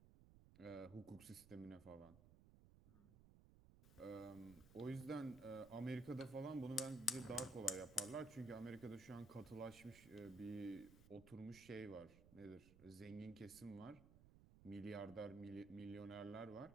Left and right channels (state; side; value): noise; right; rumble, 18 dB below the sound